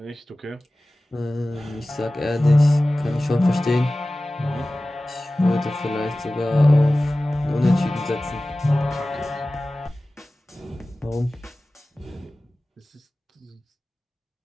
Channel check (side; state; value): both; normal; correlation 0.97